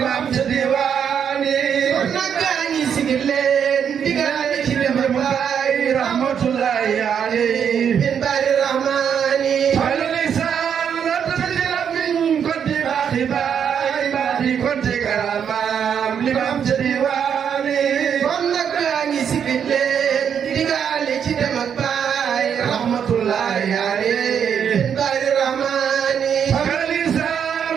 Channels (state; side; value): quieter; left; 7.9 dB